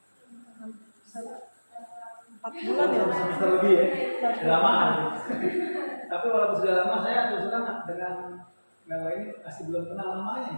4 bulan ya, semester lebih ya, lama. Tapi walaupun sudah lama, saya terus terang dengan Mewah ini masih belum kenal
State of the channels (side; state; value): both; inverted; correlation -1.00